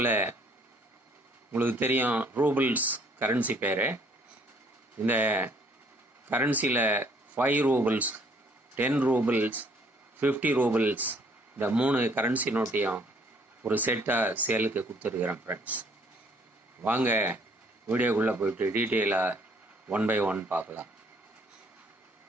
உங்களுக்கு தெரியும் ரூபிள்ஸ் கரன்சி பேர். இந்த கரன்சியில் 5 ரூபிள்ஸ், 10 ரூபிள்ஸ், 50 ரூபிள்ஸ் இந்த 3 கரன்சி நோட்டையும் ஒரு செட்டாக சேலுக்கு கொடுத்துருக்குறேன் ஃப்ரெண்ட்ஸ். வாங்க வீடியோக்குள்ளே போயிட்டு டீட்டெயிலாக 1 by 1 பார்க்கலாம்.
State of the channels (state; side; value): normal; both; correlation 0.62